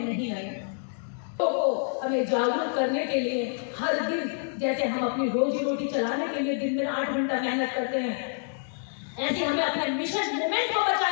नहीं आएंगे। तो हमें जागरूक करने के लिए हर दिन जैसे हम अपनी रोजी रोटी चलाने के लिए दिन में 8 घंटा मेहनत करते हैं, ऐसे हमें अपने मिशन मूवमेंट को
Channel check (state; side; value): silent; right; digital silence